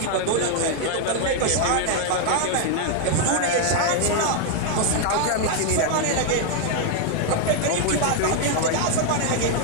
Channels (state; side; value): different; both; correlation 0.00